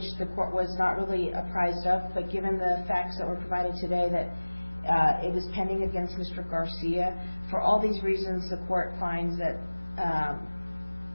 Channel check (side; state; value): both; inverted; correlation -1.00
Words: the court was not really apprised of, but given the facts that were provided today that it was pending against Mr. Garcia, for all these reasons, the court finds that